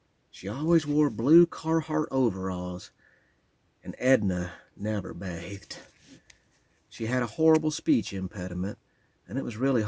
She always wore blue Carhartt overalls, and Edna never bathed. She had a horrible speech impediment, and it was really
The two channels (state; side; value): identical; both; correlation 1.00